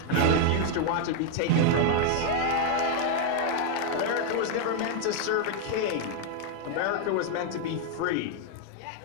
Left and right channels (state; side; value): different; both; correlation 0.00